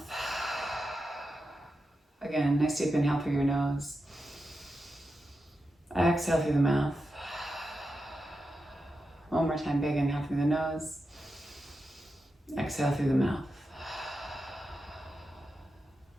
Again, nice deep inhale through your nose. Exhale through the mouth. One more time, big inhale through the nose. Exhale through the mouth.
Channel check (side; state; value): both; normal; correlation 0.89